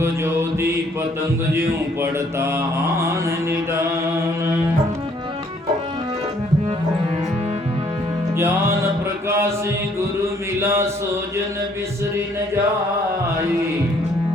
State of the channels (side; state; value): both; normal; correlation 0.64